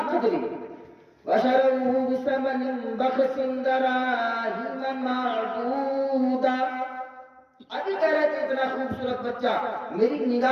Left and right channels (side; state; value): both; identical; correlation 1.00